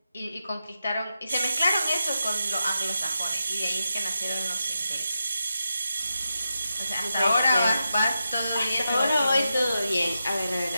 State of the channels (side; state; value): both; inverted; correlation -0.88